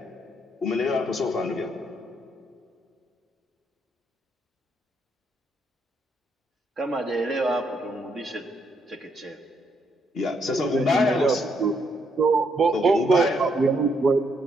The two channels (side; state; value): both; normal; correlation 0.74